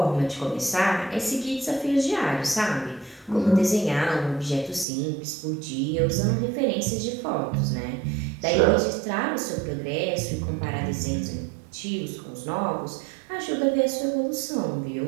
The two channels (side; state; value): left; drops out; at 4.9 s